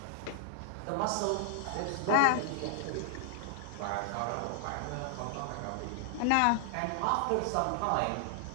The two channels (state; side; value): different; both; correlation 0.00